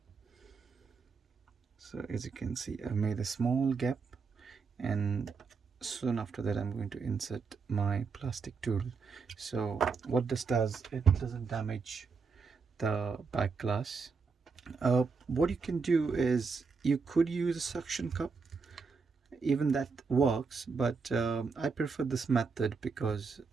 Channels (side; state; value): left; quieter; 5.0 dB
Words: So as you can see, I've made a small gap, and soon after that I'm going to insert my plastic tool. So what this does, it doesn't damage the back glass. What you can do is you could use a suction cup, even that works, but I prefer this method because